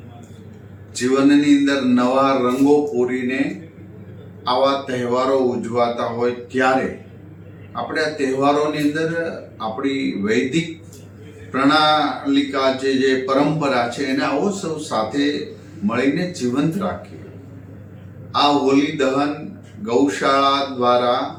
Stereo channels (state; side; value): identical; both; correlation 1.00